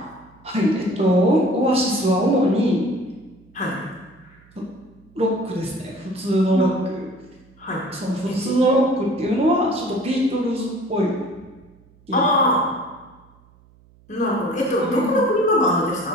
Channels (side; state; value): right; noise; hum, 29 dB below the sound